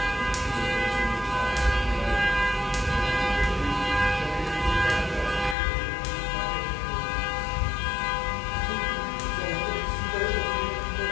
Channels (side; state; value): right; drops out; at 5.6 s